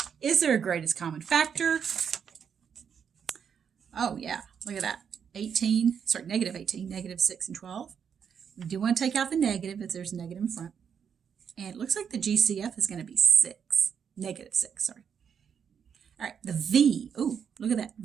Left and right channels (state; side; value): quieter; left; 7.4 dB